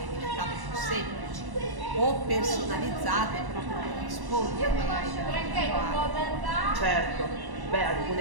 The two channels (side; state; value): left; late; 1.1 ms